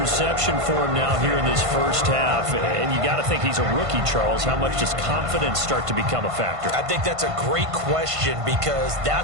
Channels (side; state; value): left; late; 1.5 ms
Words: for him now here in this first half. And you got to think he's a rookie, Charles. How much does confidence start to become a factor? I think that's a great question because